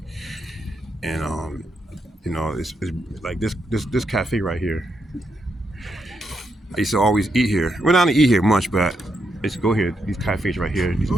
and you know, it's like this cafe right here. I used to always eat here. Well, not to eat here much, but I used to go here. These cafes right here, these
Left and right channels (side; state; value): both; normal; correlation 0.81